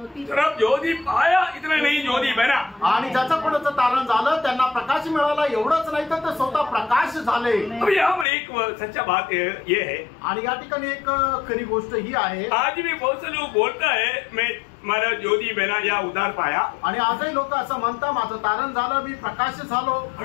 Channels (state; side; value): drops out; right; at 8.2 s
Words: सिर्फ ज्योति पाया इतना नहीं, ज्योति बना। आणि ज्याचं कोणाचं तारण झालं त्यांना प्रकाश मिळाला, एवढंच नाही तर ते स्वतः प्रकाश झाले। अभी यहाँ पर एक सच्चा बात ये है, आणि या ठिकाणी एक खरी गोष्ट ही आहे, आज भी बहुत से लोग बोलता है मैं मला ज्योति बना या उद्धार पाया, आणि आजही लोक असं म्हणतात माझं तारण झालं, मी प्रकाश झालो।